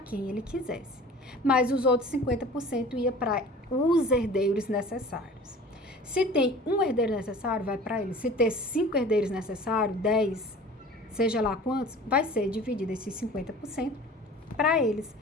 ele quisesse, mas os outros 50% ia para os herdeiros necessários. Se tem um herdeiro necessário, vai para ele. Se ter 5 herdeiros necessários, 10, seja lá quantos, vai ser dividido esses 50% para eles.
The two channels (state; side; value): normal; both; correlation 0.43